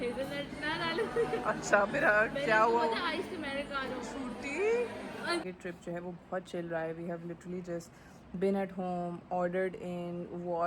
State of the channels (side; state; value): both; identical; correlation 1.00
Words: ना डालो. अच्छा फिर क्या हुआ? Ice americano. ये ट्रिप जो है वो बहुत चिल रहा है. We have literally just been at home, ordered in,